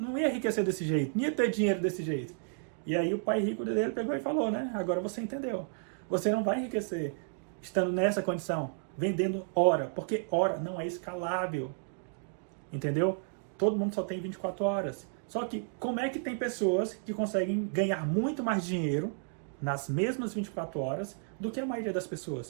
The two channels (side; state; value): left; silent; digital silence